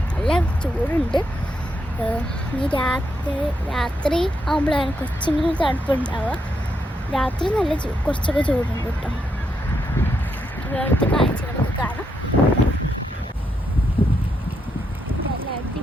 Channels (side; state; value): both; normal; correlation 0.80